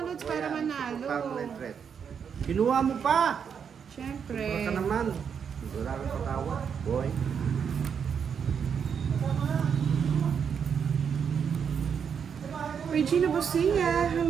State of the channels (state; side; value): quieter; left; 7.1 dB